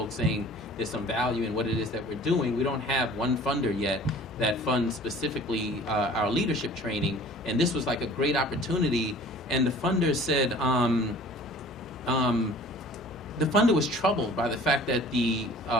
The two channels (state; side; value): normal; both; correlation 0.48